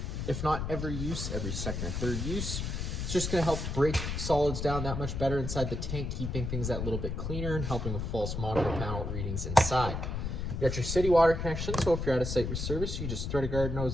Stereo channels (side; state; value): left; noise; rumble, 3 dB below the sound